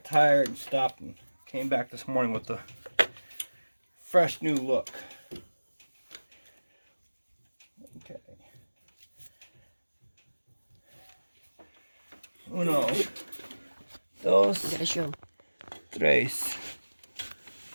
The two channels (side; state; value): both; inverted; correlation -1.00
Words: tired and stopped and came back this morning with a fresh new look. Okay. Uno, dos, Gotta show. tres.